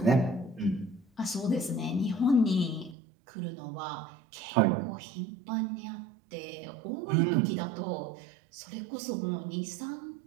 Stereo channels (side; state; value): left; drops out; at 3.0 s